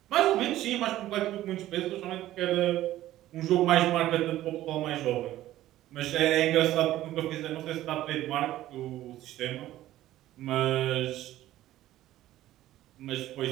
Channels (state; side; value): quieter; left; 14.4 dB